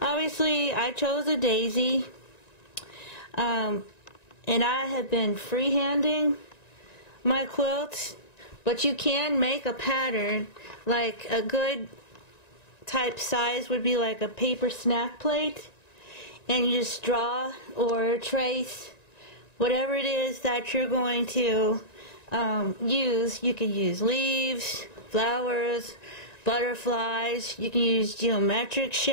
Obviously, I chose a daisy. And I have been freehanding my quilts, but you can make a pattern. Like a good type size would be like a paper snack plate, and you just draw or trace whatever it is that you're going to use. You can use leaves, flowers, butterflies. You can use geometric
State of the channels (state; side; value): late; right; 1.9 ms